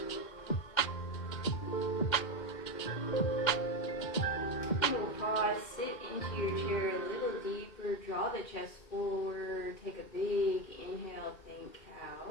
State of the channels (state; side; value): late; right; 2.1 ms